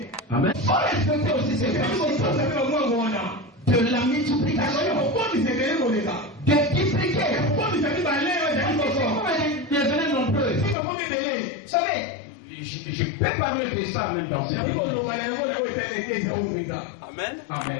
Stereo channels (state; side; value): drops out; right; at 10.8 s